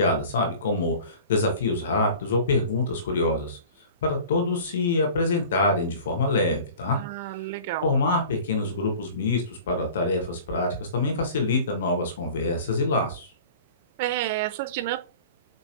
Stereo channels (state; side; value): inverted; both; correlation -0.42